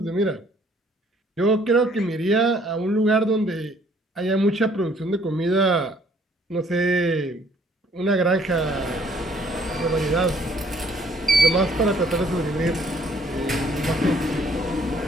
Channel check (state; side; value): normal; both; correlation 0.62